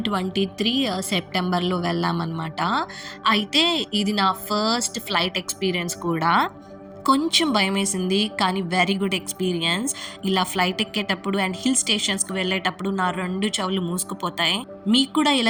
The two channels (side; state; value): both; identical; correlation 1.00